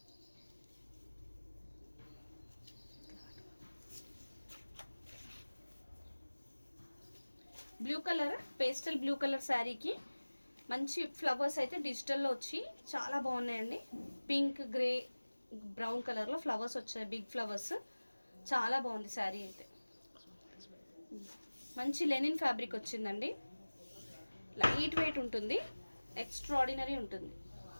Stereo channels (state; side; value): inverted; both; correlation -1.00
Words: Blue colour, pastel blue colour శారీకి మంచి ఫ్లవర్స్ అయితే డిజిటల్లో వచ్చి చాలా బాగున్నాయండి. పింక్, గ్రే, బ్రౌన్ కలర్లో ఫ్లవర్స్ వచ్చాయి, బిగ్ ఫ్లవర్స్. చాలా బాగుంది శారీ అయితే. మంచి లెనిన్ ఫ్యాబ్రిక్ వచ్చిందండి, లైట్ వెయిట్ ఉంటుంది, ఎక్స్ట్రాడినరీ ఉంటుంది.